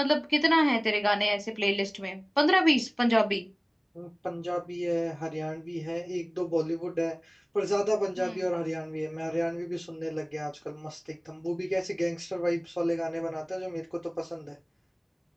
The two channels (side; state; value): both; identical; correlation 1.00